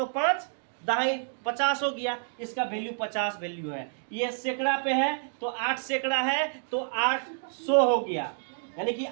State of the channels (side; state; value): left; silent; digital silence